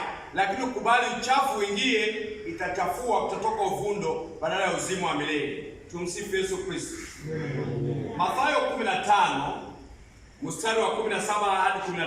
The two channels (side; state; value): both; identical; correlation 1.00